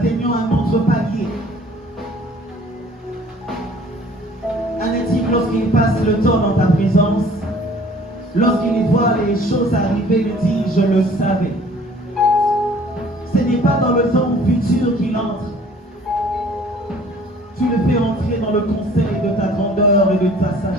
un autre palier. Un natif, lorsqu'il passe le temps dans ta présence, lorsqu'il voit les choses arriver, il dit « Je le savais ». Ce n'est pas dans le temps futur qu'il entre. Tu le fais entrer dans le conseil de ta grandeur et de ta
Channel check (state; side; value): normal; both; correlation 0.53